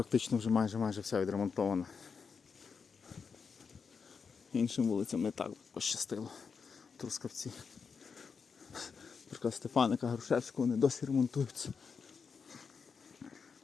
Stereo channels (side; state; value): right; quieter; 5.7 dB